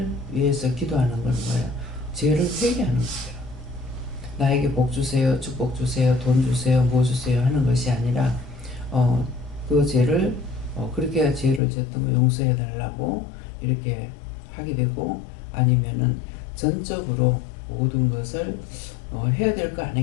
위해서 기도하는 건 뭐예요? 죄를 회개하는 거예요. 나에게 복 주세요, 축복 주세요, 돈 주세요, 뭐 주세요 하는 것이 아니라 그 죄를 그렇게 죄를 졌던 거 용서해 달라고 이렇게 하게 되고, 아니면은 전적으로 모든 것을 해야 될 거 안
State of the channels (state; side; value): drops out; right; at 11.6 s